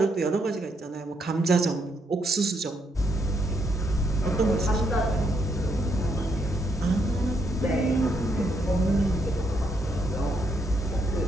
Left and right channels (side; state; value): both; normal; correlation 0.76